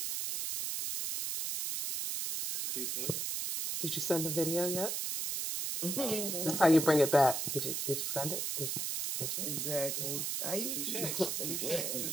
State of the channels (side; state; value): right; noise; hiss, 1 dB below the sound